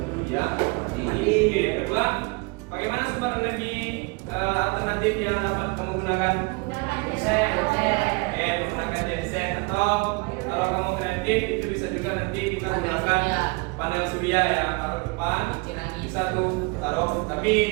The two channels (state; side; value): quieter; left; 28.1 dB